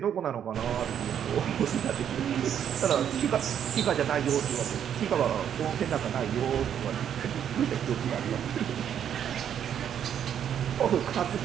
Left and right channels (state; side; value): quieter; left; 9.2 dB